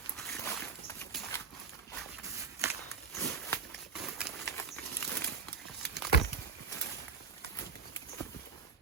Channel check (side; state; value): left; quieter; 5.7 dB